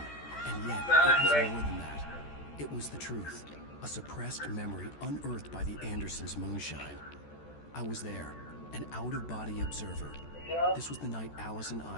and yet it was more than that. It was the truth, a suppressed memory unearthed by the Andersons' moonshine. I was there, an out-of-body observer. This was the night Alice and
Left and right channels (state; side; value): late; right; 14 ms